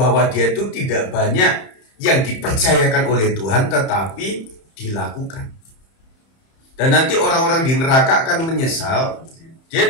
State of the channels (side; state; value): right; late; 31 ms